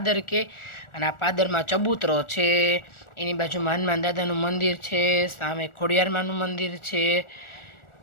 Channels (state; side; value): late; right; 1.4 ms